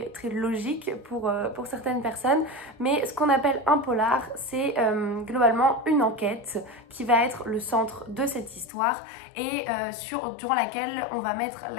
logique pour certaines personnes, mais ce qu'on appelle un polar c'est globalement une enquête qui va être le centre de cette histoire et durant laquelle on va mettre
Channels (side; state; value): right; drops out; at 8.7 s